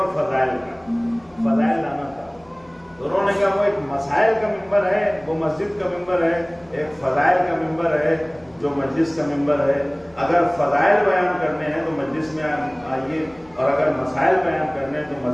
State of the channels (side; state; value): left; noise; hum, 28 dB below the sound